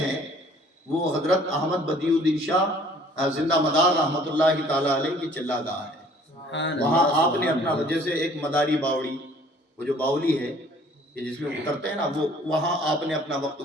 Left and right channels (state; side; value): normal; both; correlation 0.55